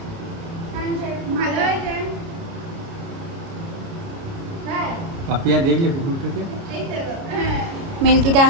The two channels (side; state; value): left; late; 29 ms